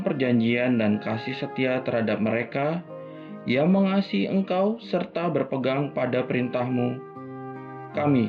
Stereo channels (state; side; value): identical; both; correlation 1.00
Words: perjanjian dan kasih setia terhadap mereka yang mengasihi Engkau serta berpegang pada perintah-Mu.